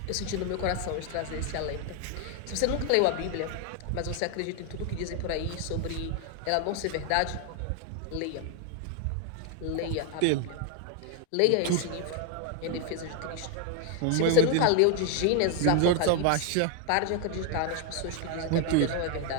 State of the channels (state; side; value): different; both; correlation 0.01